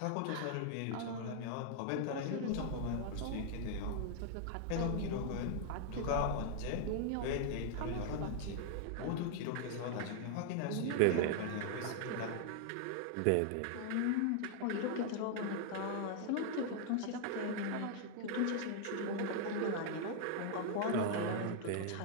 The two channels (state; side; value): different; both; correlation 0.00